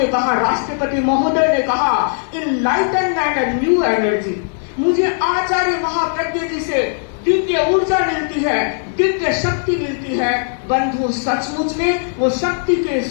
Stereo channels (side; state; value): right; silent; 68 dB below the other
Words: कहा, राष्ट्रपति महोदय ने कहा, इनलाइटनमेंट एंड न्यू एनर्जी, मुझे आचार्य महाप्रज्ञ जी से दिव्य ऊर्जा मिलती है, दिव्य शक्ति मिलती है। बंधु, सचमुच में वो शक्ति के